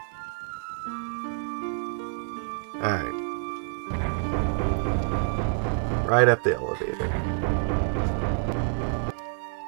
Alright. Right up the elevator.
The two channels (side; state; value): left; silent; digital silence